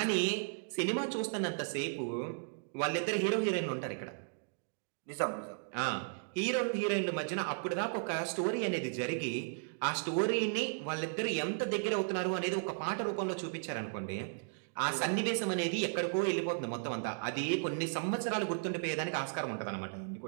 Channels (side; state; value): left; silent; digital silence